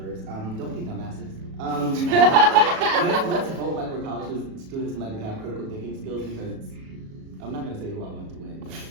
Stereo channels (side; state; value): left; late; 37 ms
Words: Don't be dumbasses. Let's vote like we're college students and like we have critical thinking skills, because I'm not going to say who I want to win, but